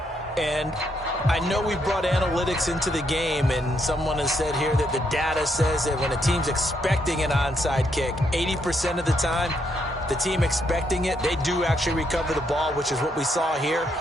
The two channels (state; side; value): normal; both; correlation 0.76